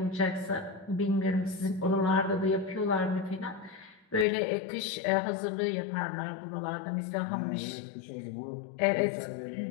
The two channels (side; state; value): right; drops out; at 4.2 s